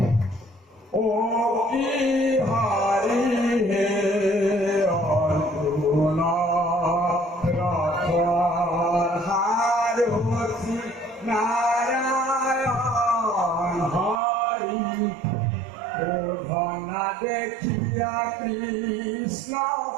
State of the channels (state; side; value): drops out; left; at 14.2 s